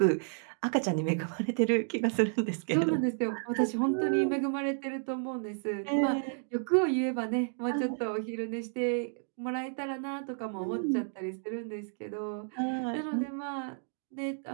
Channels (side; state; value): left; silent; digital silence